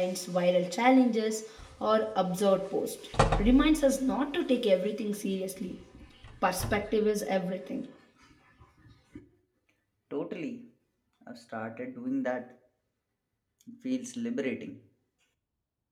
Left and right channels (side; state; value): both; identical; correlation 1.00